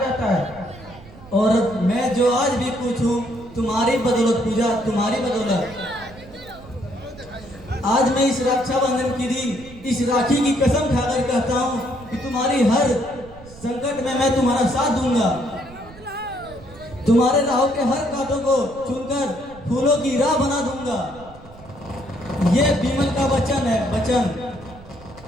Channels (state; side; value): noise; right; rumble, 20 dB below the sound